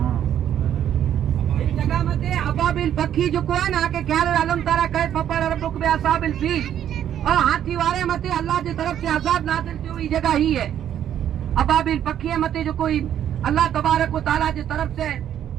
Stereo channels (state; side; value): quieter; left; 10.3 dB